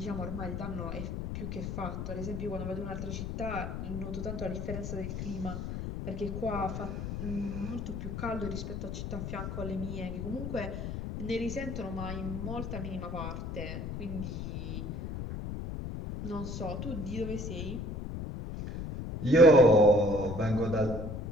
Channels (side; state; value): left; noise; rumble, 5 dB below the sound